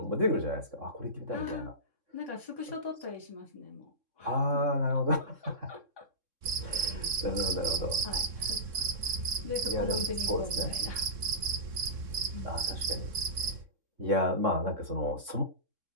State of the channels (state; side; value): late; left; 3.6 ms